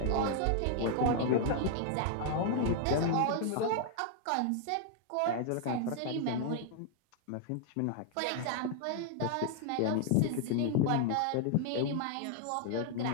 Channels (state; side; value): different; both; correlation 0.00